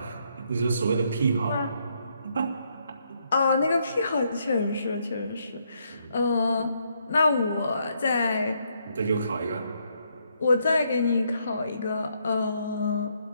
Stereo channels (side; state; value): both; inverted; correlation -0.74